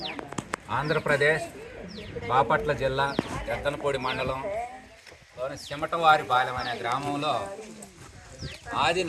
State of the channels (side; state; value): both; identical; correlation 1.00